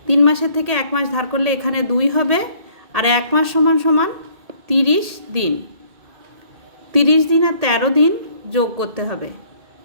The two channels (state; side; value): late; left; 1.8 ms